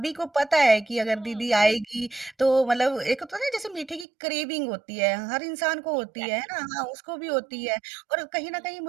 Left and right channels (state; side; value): drops out; left; at 4.0 s